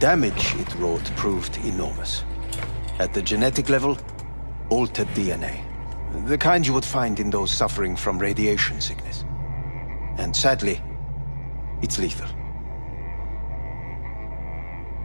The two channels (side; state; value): both; inverted; correlation -1.00